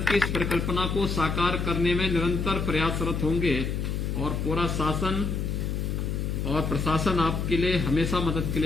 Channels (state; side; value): noise; left; hum, 1 dB below the sound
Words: की इस परिकल्पना को साकार करने में निरंतर प्रयासरत होंगे और पूरा शासन और प्रशासन आपके लिए हमेशा मदद के